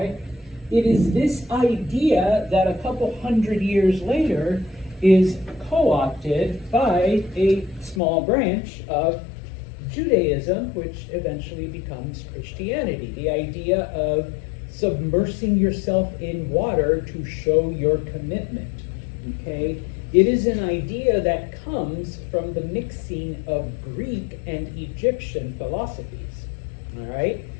It is this idea that a couple hundred years later is co-opted by a small branch of Judaism, which eventually becomes Christianity. The idea of submersing yourself in water to show your commitment. Okay? It is an idea that comes from the mixing of Greek and Egyptian philosophies. All right?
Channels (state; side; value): drops out; right; at 8.0 s